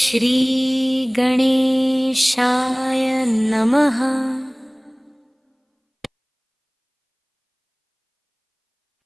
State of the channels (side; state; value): both; identical; correlation 1.00